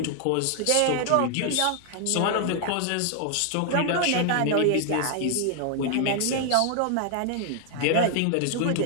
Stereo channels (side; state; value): both; different; correlation 0.00